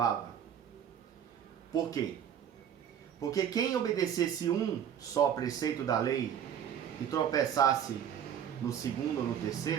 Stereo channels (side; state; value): left; quieter; 8.9 dB